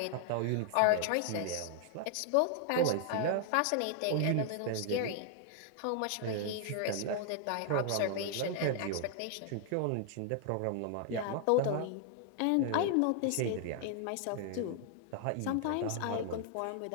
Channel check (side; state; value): both; different; correlation 0.00